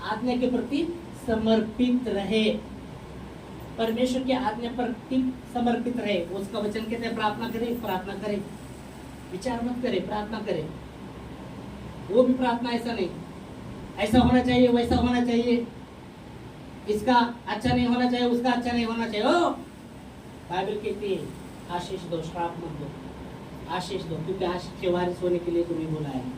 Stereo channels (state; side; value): identical; both; correlation 1.00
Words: आज्ञा के प्रति समर्पित रहे, परमेश्वर के आज्ञा पर समर्पित रहे। उसका वचन कहते हैं प्रार्थना करें, प्रार्थना करें, विचार मत करें, प्रार्थना करें। वो भी प्रार्थना ऐसा नहीं, ऐसा होना चाहिए, वैसा होना चाहिए, इसका अच्छा नहीं होना चाहिए, उसका अच्छा नहीं होना चाहिए। ओ बाइबल कहती है आशीष दो, श्राप मत दो, आशीष दो, क्योंकि आशीष के वारिस होने के लिए तुम्हें बुलाया